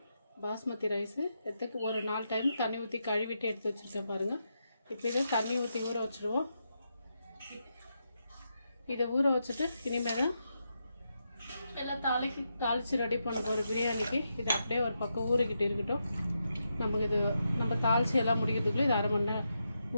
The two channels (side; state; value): both; inverted; correlation -0.84